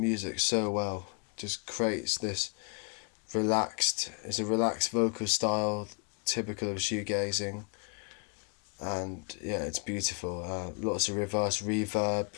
so well. Just creates this it's a relaxed vocal style typical of shoegazing, and yeah, it's beautiful. Lots of reverse reverb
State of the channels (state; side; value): quieter; right; 37.4 dB